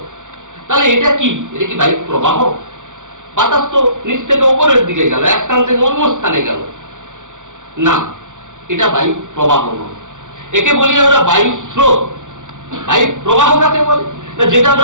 তাহলে এটা কি? এটা কি বায়ু প্রবাহ? বাতাস তো নিচ থেকে ওপরের দিকে গেল, এক স্থান থেকে অন্য স্থানে গেল না, এটা বায়ু প্রবাহ নয়। একে বলি আমরা বায়ু স্রোত। বায়ু প্রবাহ কাকে বলে না? যেটা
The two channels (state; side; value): late; left; 0.86 ms